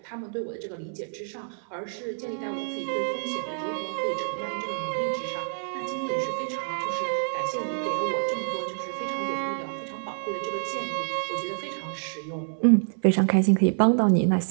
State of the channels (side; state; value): left; silent; 60 dB below the other